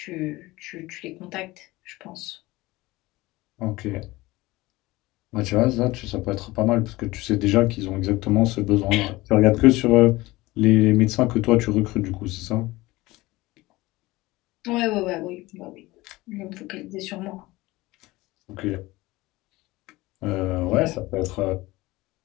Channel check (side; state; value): right; quieter; 20.0 dB